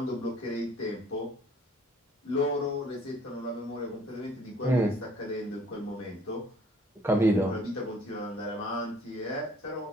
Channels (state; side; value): normal; both; correlation 0.57